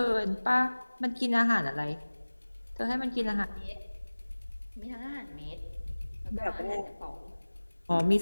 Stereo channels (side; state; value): both; inverted; correlation -1.00